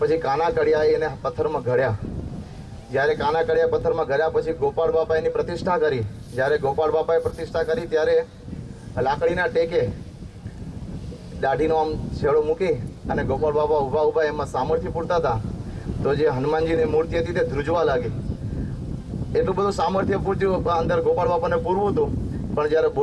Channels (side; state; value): both; identical; correlation 1.00